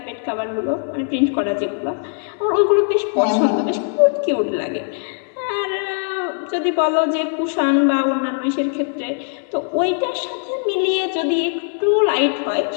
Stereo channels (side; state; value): right; silent; 65 dB below the other